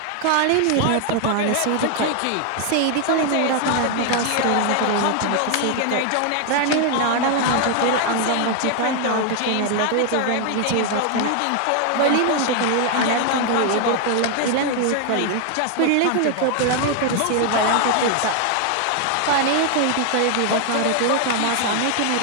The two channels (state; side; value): different; both; correlation 0.00